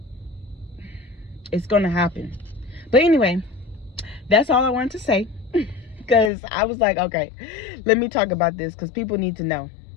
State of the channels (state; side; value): drops out; right; at 6.3 s